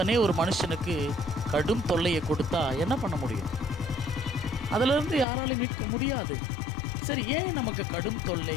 ஒரு மனுஷனுக்கு கடும் தொல்லையை கொடுத்தா என்ன பண்ண முடியும்? அதிலிருந்து யாராலையும் மீட்க முடியாது. சரி, ஏன் நமக்கு கடும் தொல்லை,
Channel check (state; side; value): drops out; right; at 5.2 s